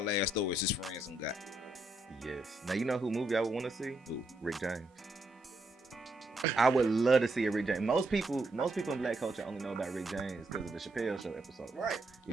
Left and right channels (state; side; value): normal; both; correlation 0.75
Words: ass stories his friends done got. Yes. Now you know who movie I would want to see? Who? Rick James. I would love to see a Rick James. Most people in black culture only know about Rick James because of the Chappelle Show episode. Right. You